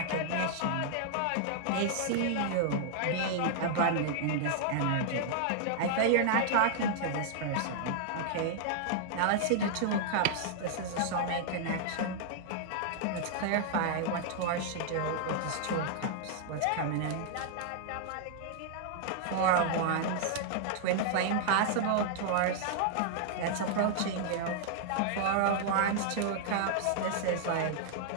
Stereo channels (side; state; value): both; different; correlation -0.01